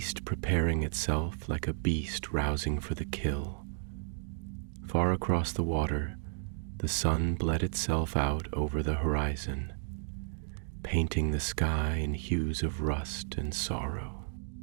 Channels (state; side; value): silent; left; digital silence